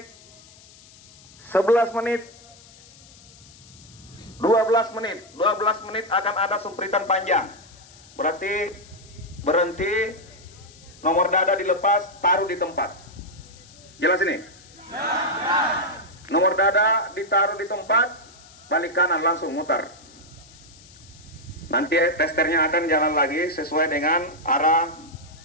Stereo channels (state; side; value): noise; left; hiss, 23 dB below the sound